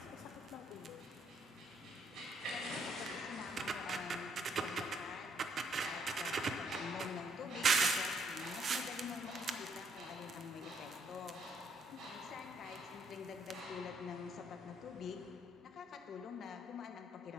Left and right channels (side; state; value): both; normal; correlation 0.70